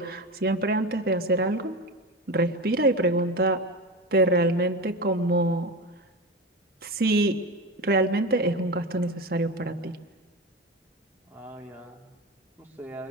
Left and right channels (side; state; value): both; normal; correlation 0.24